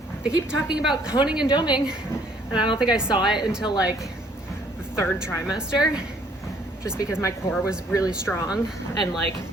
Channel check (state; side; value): normal; both; correlation 0.62